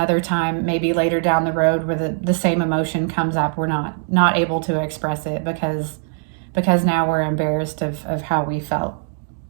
time, maybe later down the road, where the same emotion comes up. We're not able to express it because now we're embarrassed of how we felt.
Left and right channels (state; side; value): silent; left; 56 dB below the other